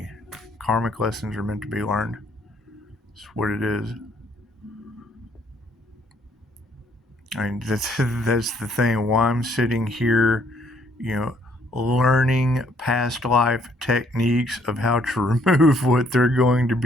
Karmic lessons are meant to be learned. It's what it is. I mean, that's the thing. While I'm sitting here, learning past life techniques of how to remove what they're going to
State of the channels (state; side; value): normal; both; correlation 0.66